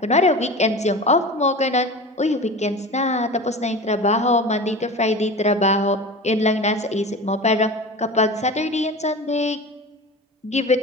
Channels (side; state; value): both; normal; correlation 0.32